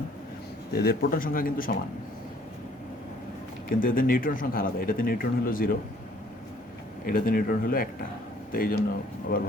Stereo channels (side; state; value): both; normal; correlation 0.59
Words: তো এদের প্রোটন সংখ্যা কিন্তু সমান, কিন্তু এদের নিউট্রন সংখ্যা আলাদা। এটাতে নিউট্রন হলো 0, এটাতে নিউট্রন হলো 1টা। তো এই জন্য আবার